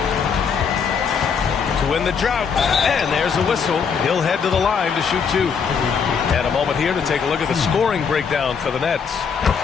To win the drought. And there's a whistle. He'll head to the line to shoot 2. And a moment here to take a look at the scoring breakdown for the Nets.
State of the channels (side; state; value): right; quieter; 6.3 dB